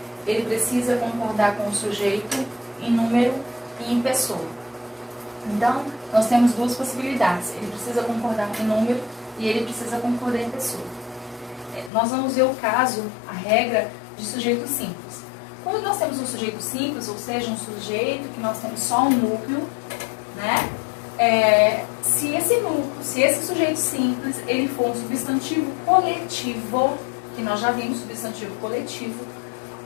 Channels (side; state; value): right; drops out; at 11.9 s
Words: ele precisa concordar com o sujeito em número e em pessoa. Então, nós temos duas possibilidades. Ele precisa concordar em número e ele precisa concordar em pessoa. Nós vamos ver o caso, a regra de sujeito simples. Quando nós temos um sujeito simples, ou seja, um sujeito que nós temos só um núcleo, né? Se esse sujeito simples, ele for um substantivo coletivo, que nós já vimos substantivo coletivo,